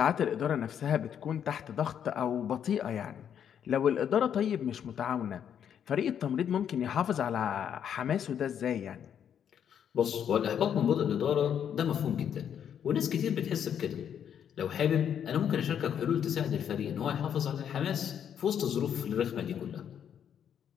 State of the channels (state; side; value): quieter; right; 8.8 dB